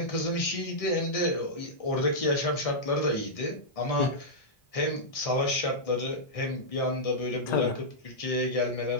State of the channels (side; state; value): right; late; 1.6 ms